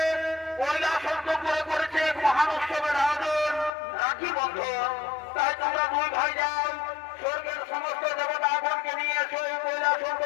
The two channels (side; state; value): right; drops out; at 3.7 s